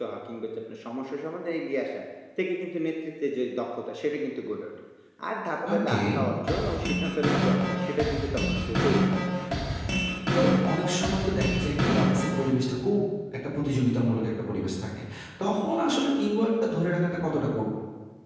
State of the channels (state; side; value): identical; both; correlation 1.00